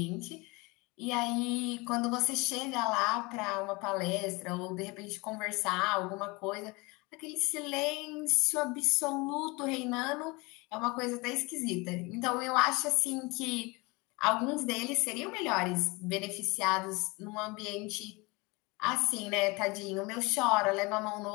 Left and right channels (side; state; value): right; quieter; 25.7 dB